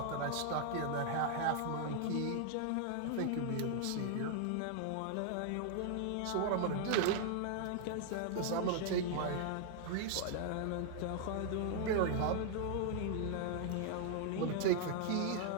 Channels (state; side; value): different; both; correlation 0.00